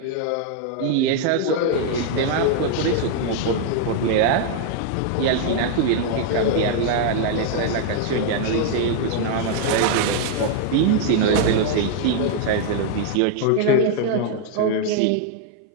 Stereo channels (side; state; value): both; different; correlation 0.00